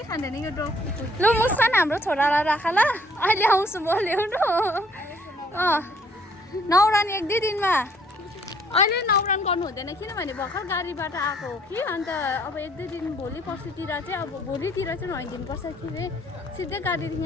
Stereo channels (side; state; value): both; normal; correlation 0.63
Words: खाँदैन यो डग। ल मुस्कान हाम्रो छोरालाई राख ल, अहिले आउँछु म ल्याउनु। नौरान 1-2 दिनमा। अहिले नौरान गर्नु हुँदैन, किनभने भर्खर गाडीबाट आएको हो कि। अन्त अब 1-2 दिन भोलि पर्सितिर चाहिँ, अब भोलितिर चाहिँ नुहाइदिनुपर्छ कि सिधै गाडीदेखि